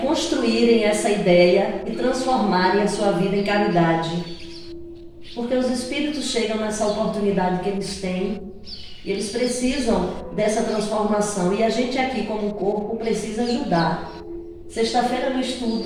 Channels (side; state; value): both; identical; correlation 1.00